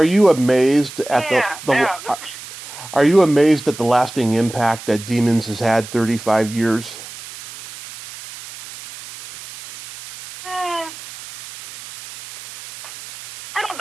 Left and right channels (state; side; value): noise; right; hiss, 15 dB below the sound